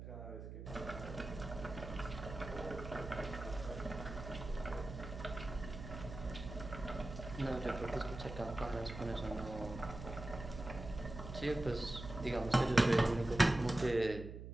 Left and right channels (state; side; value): noise; right; hum, 10 dB below the sound